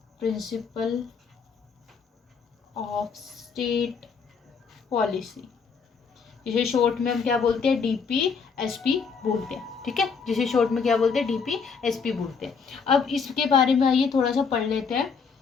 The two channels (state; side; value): quieter; right; 5.6 dB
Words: principle of state policy, जिसे शॉर्ट में हम क्या बोलते हैं? डीपीएसपी बोलते हैं। ठीक है, जिसे शॉर्ट में क्या बोलते हैं? डीपीएसपी बोलते हैं। अब इसके बारे में आइए थोड़ा सा पढ़ लेते हैं।